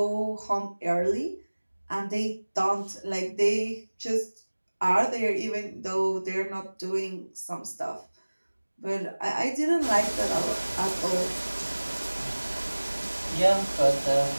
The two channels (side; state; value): both; inverted; correlation -1.00